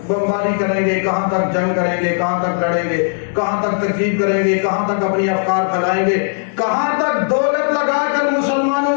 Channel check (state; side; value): silent; right; digital silence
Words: بمباری کریں گے، کہاں تک جنگ کریں گے، کہاں تک لڑیں گے، کہاں تک تکذیب کریں گے، کہاں تک اپنی افکار پھیلائیں گے، کہاں تک دولت لگا کر